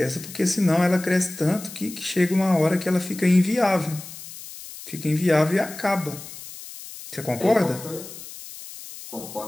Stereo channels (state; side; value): noise; left; hiss, 14 dB below the sound